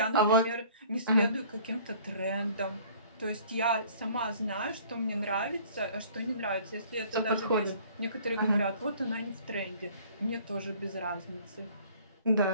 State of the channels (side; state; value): both; inverted; correlation -0.52